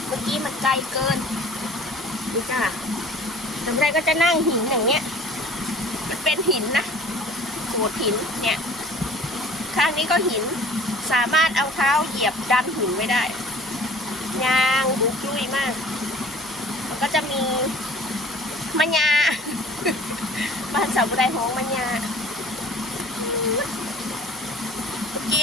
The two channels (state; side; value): normal; both; correlation 0.49